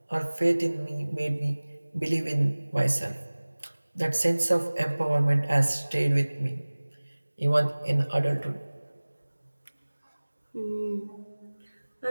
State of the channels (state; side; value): inverted; both; correlation -1.00